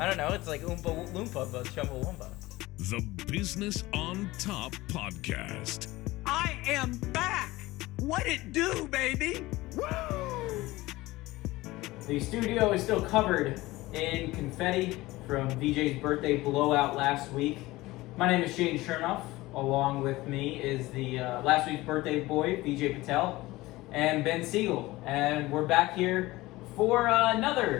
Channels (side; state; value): right; quieter; 19.2 dB